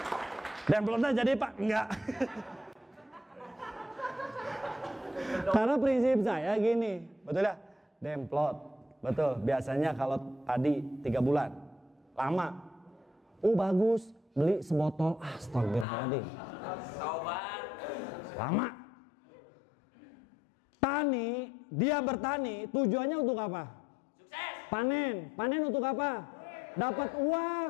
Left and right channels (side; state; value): right; drops out; at 15.9 s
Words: Dan belum jadi Pak, enggak. Karena prinsip saya gini, betul ya? Demplot, betul. Biasanya kalau padi 3 bulan, lama. Bagus, beli sebotol. Astagfirullahaladzim. Lama. Tani, dia bertani, tujuannya untuk apa? Sukses. Panen untuk apa? Dapat uang.